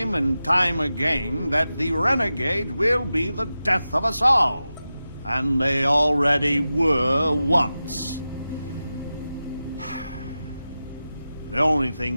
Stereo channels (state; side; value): inverted; both; correlation -0.93